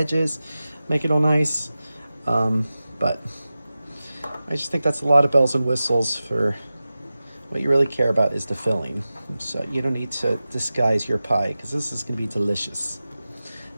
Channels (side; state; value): both; inverted; correlation -0.95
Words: make it all nice. But I just think that's a lot of bells and whistles for what you really care about is the filling. So you don't need to disguise your pie because this is going to be delicious.